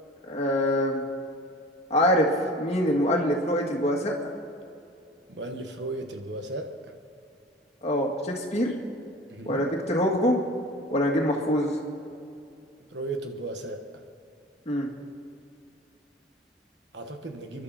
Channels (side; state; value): both; normal; correlation 0.40